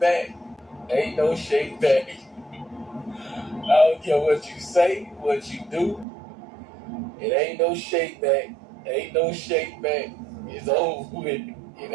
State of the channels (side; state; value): left; drops out; at 6.1 s